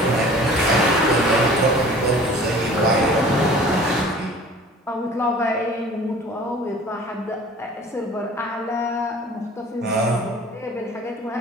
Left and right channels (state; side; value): normal; both; correlation 0.46